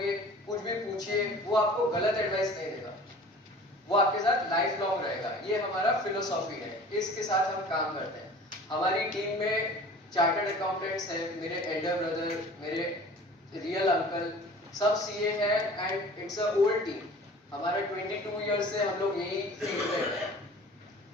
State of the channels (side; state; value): both; normal; correlation 0.44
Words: कुछ भी पूछिए, वो आपको गलत एडवाइस नहीं देगा, वो आपके साथ लाइफ लॉन्ग रहेगा. ये हमारा फिलोसॉफी है, इसके साथ हम काम करते हैं. हमारी टीम में चार्टर्ड अकाउंटेंट्स हैं, मेरे एल्डर ब्रदर, मेरे रियल अंकल, सब CA है and it's a old team. हमारा 22 ईयर्स से हम लोग यही फील्ड में हैं,